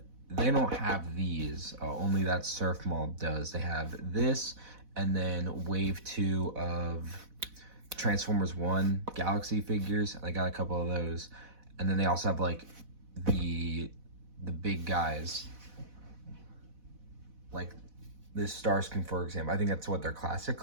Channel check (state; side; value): late; left; 4.1 ms